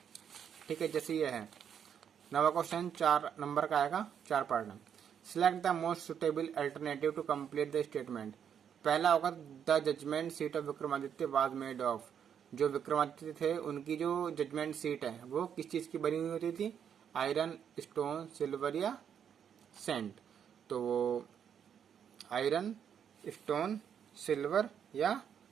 ठीक है, जैसे ये है नवा क्वेश्चन 4 नंबर का आएगा, 4 पार्ट में। Select the most suitable alternative to complete the statement. पहला होगा the judgement seat of Vikramaditya was made of. जो विक्रमादित्य थे उनकी जो जजमेंट सीट है वो किस चीज की बनी हुई होती थी? आयरन, स्टोन, सिल्वर या सेंट। तो वो आयरन, स्टोन, सिल्वर या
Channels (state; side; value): quieter; left; 8.3 dB